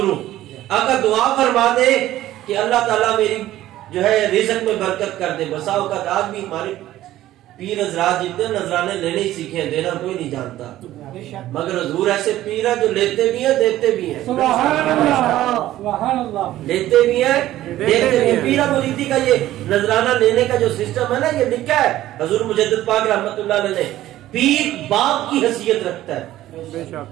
ہوں، اگر دعا فرما دے کہ اللہ تعالیٰ میری جو ہے رزق میں برکت کر دے۔ بسا اوقات آج بھی ہمارے پیر حضرات جتنے نذرانے لینے ہی سیکھے ہیں، دینا کوئی نہیں جانتا، مگر حضور ایسے پیر ہیں جو لیتے بھی ہیں دیتے بھی ہیں، سبحان اللہ سبحان اللہ، لیتے بھی ہیں دیتے بھی ہیں۔ پیرا مریدی کا یہ نذرانہ لینے کا جو سسٹم ہے نا، یہ لکھا ہے حضور مجدد پاک رحمت اللہ علیہ نے، پیر باپ کی حیثیت رکھتا ہے، بے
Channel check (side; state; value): left; quieter; 14.3 dB